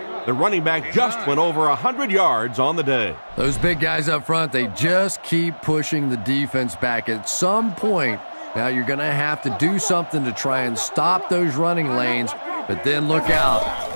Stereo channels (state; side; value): inverted; both; correlation -1.00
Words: the running back just went over 100 yards on the day. Those big guys up front, they just keep pushing the defense back. At some point, now you're going to have to do something to try and stop those running lanes, but then look out.